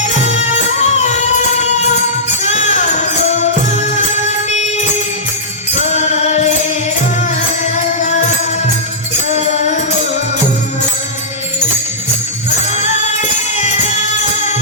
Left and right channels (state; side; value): normal; both; correlation -0.14